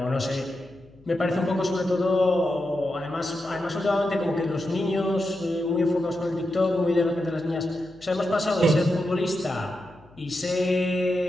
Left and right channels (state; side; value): noise; left; hum, 27 dB below the sound